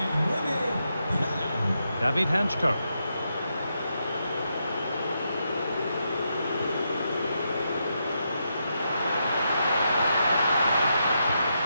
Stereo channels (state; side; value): inverted; both; correlation -0.83